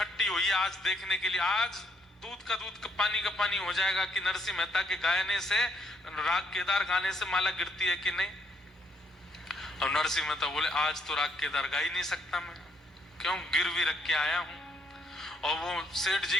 हुई आज देखने के लिए। आज दूध का दूध का पानी हो जाएगा कि नरसिंह मेहता के गायने से, राग केदार गाने से माला गिरती है कि नहीं। और नरसिंह मेहता बोले आज तो राग केदार गा ही नहीं सकता मैं, क्यों, गिरवी रख के आया हूं। और वो सेठ जी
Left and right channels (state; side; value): normal; both; correlation 0.71